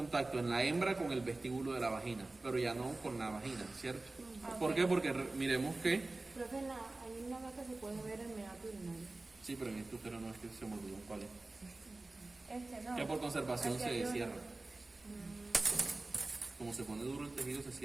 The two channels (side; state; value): left; quieter; 3.1 dB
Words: en la hembra con el vestíbulo de la vagina, pero ya no con la vagina, ¿cierto? ¿Por qué? Porque miremos que... Profe, hay una vaca se puede ver el meato urinario. Sí, pero en este útero no es que se me olvidó cuál es. No. Que por conservación Hacia se arriba. cierra. Como se pone duro el tejido, se